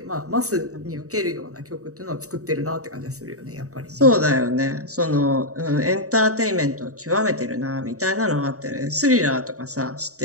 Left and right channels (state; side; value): late; left; 0.65 ms